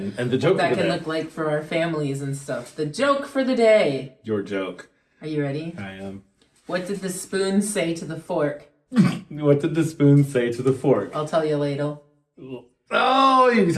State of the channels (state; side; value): identical; both; correlation 1.00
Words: the joke what that can look like for our families and stuff. The joke for the day. Your joke. Are you ready? I am. What did the spoon say to the fork? What did the spoon say to the fork? I'll tell you later. Oh, you